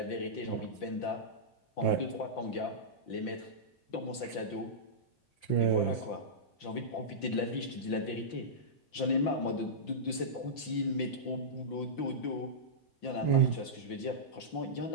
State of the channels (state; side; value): late; right; 5.8 ms